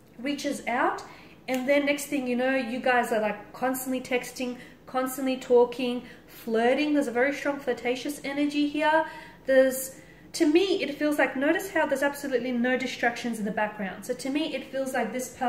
reaches out and then next thing you know, you guys are like constantly texting, constantly talking, flirting. There's a very strong flirtatious energy here. To me, it feels like, notice how there's absolutely no distractions in the background. So to me, it feels like this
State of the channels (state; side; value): identical; both; correlation 1.00